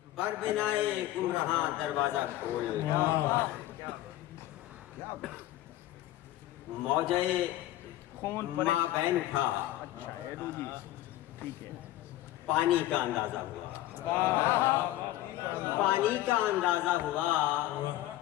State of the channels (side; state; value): right; quieter; 15.1 dB